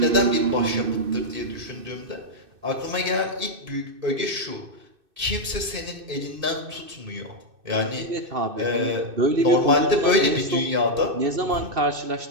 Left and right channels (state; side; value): late; left; 2.6 ms